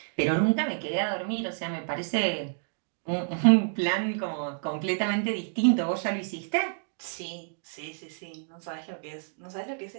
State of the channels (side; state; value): left; silent; digital silence